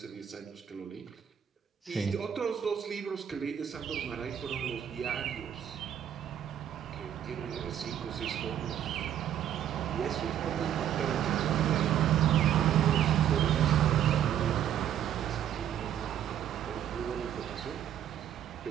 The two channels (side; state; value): left; quieter; 10.1 dB